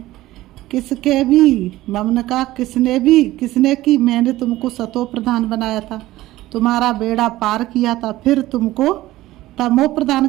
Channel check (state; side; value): quieter; left; 16.5 dB